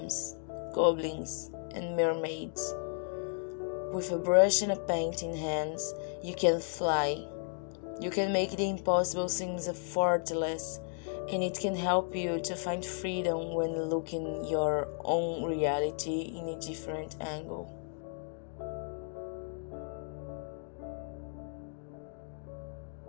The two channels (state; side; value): silent; right; 55 dB below the other